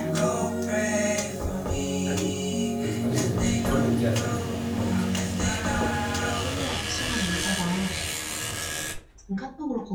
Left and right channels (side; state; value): both; identical; correlation 1.00